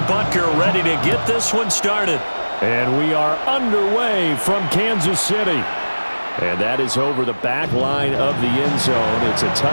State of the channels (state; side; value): inverted; both; correlation -1.00